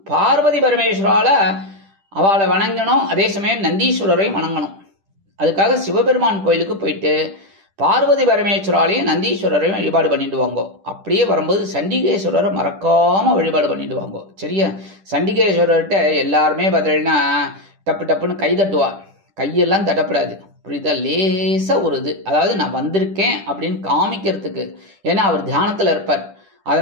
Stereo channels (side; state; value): left; late; 10 ms